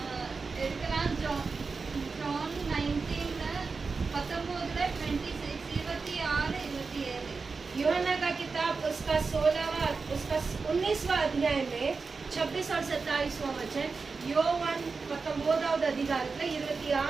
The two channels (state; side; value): quieter; left; 4.5 dB